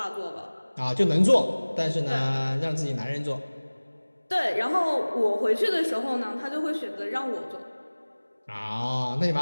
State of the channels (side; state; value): both; inverted; correlation -1.00